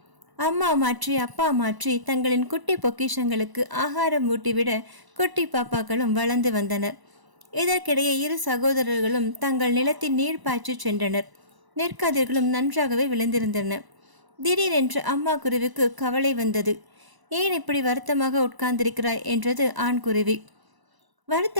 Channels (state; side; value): late; left; 1.0 ms